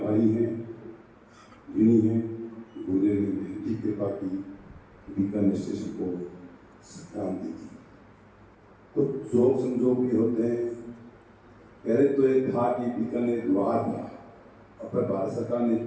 हैं, ऋणी हैं। गुरुदेव ने बेहद कृपा की, बीकानेर स्टेशन को क्रांति की। कुछ जोग संजोग भी होते हैं। पहले तो ये था कि बीकानेर द्वार था, और फिर भारत सरकार ने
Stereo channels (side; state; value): both; identical; correlation 1.00